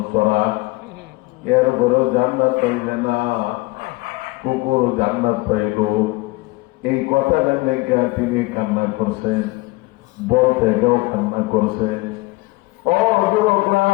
তোরা এর ঘরেও জান্নাত পাইলে না কুকুর জান্নাত পাইল এই কথাটা লেগে তিনি কান্না করছেন বলতে গেও কান্না করছে ও যুবকরা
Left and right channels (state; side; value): quieter; right; 22.1 dB